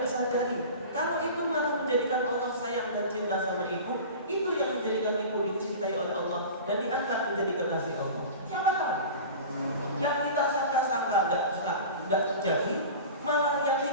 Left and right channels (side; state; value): both; inverted; correlation -0.35